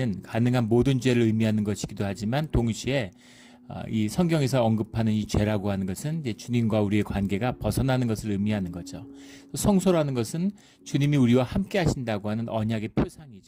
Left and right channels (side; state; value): both; identical; correlation 1.00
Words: 가능한 모든 죄를 의미하는 것이기도 하지만 동시에 이 성경에서 언급하는 이 죄라고 하는 것은 이제 주님과 우리의 관계가 벗어나는 것을 의미하는 거죠. 성소라는 것은 주님이 우리와 함께 하신다고 하는 언약의